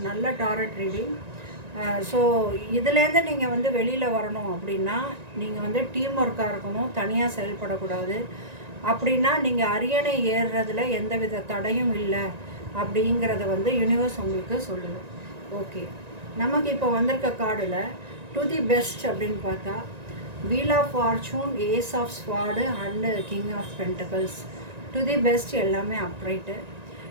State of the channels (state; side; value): late; left; 1.9 ms